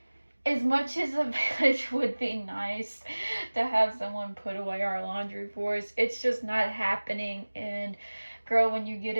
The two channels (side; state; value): both; inverted; correlation -1.00